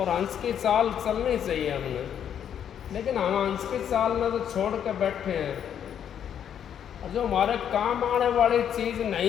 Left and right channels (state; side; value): quieter; right; 9.0 dB